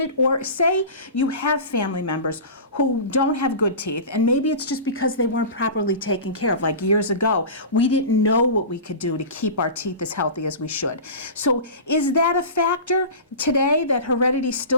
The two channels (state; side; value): inverted; both; correlation -0.31